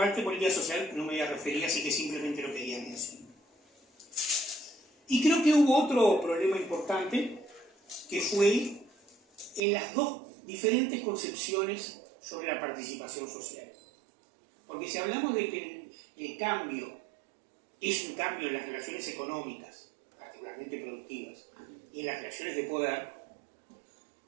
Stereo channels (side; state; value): left; drops out; at 9.6 s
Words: política social no me voy a referir, así que simplemente lo quería mencionar. Y creo que hubo otro problema importante, que fue en las dos diferentes concepciones sobre la participación social. Porque si hablamos de que el cambio es un cambio en las relaciones económicas, particularmente productivas, y en las relaciones de poder,